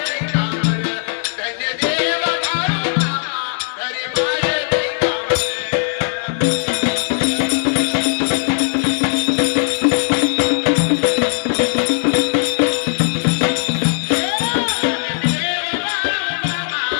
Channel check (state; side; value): silent; right; digital silence